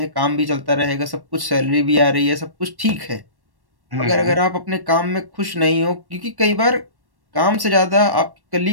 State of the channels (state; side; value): late; left; 1.1 ms